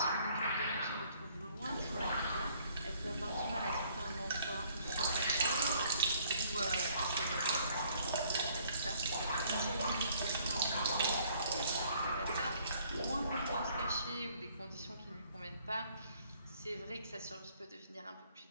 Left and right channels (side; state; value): both; inverted; correlation -0.62